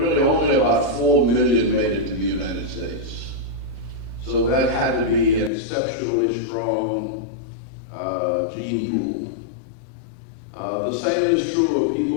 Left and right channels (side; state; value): right; drops out; at 5.5 s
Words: only about 4 million made it to the United States. So that had to be an exceptionally strong gene pool. The same is true of